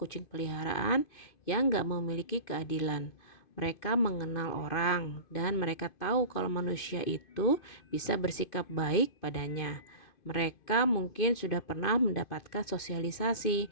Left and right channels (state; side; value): late; right; 2.5 ms